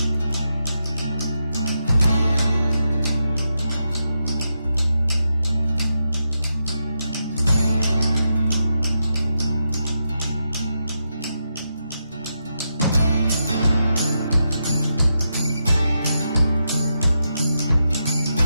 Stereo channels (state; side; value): inverted; both; correlation -0.85